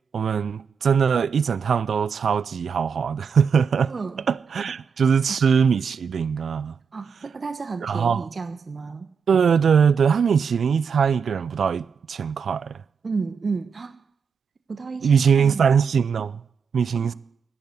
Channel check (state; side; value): quieter; left; 6.3 dB